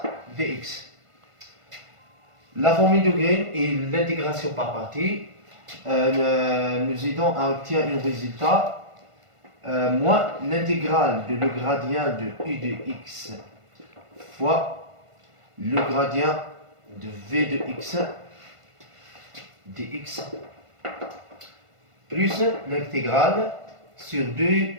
dx. La formule de Green et l'intégration par partie nous aidons à obtenir un résultat moins l'intégrale de le gradient de u de x fois le gradient de v de x dx plus l'intégrale sur 2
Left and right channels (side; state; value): left; late; 1.5 ms